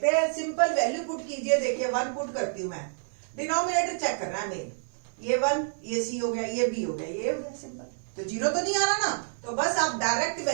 हैं, सिंपल वैल्यू पुट कीजिए। देखिए 1 पुट करती हूं मैं, डिनोमिनेटर चेक करना है मेन, ये 1 ये c हो गया, ये b हो गया, ये हो गया सिंपल। तो 0 तो नहीं आ रहा ना, तो बस आप डायरेक्ट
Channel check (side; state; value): left; silent; 59 dB below the other